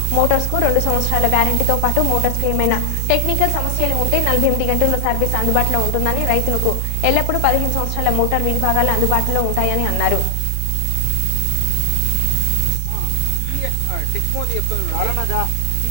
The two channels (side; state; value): both; different; correlation 0.00